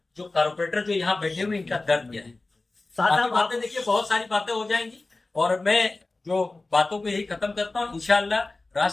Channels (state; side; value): quieter; right; 3.2 dB